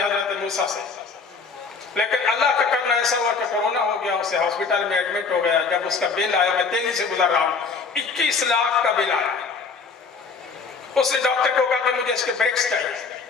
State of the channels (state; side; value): quieter; right; 4.9 dB